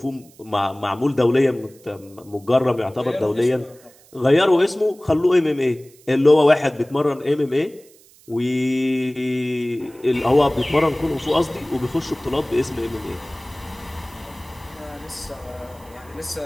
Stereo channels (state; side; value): noise; right; hiss, 27 dB below the sound